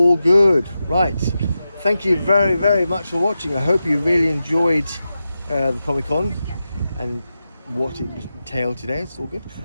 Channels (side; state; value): both; inverted; correlation -0.91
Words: good, right? Thank you very, very much for watching. I hope you really enjoyed the Comic Con and what it entailed today. It's all good,